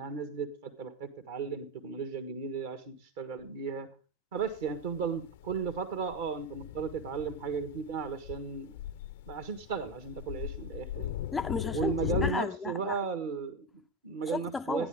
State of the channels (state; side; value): normal; both; correlation 0.14